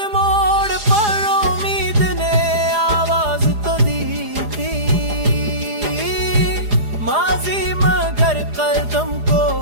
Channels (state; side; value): late; left; 4.9 ms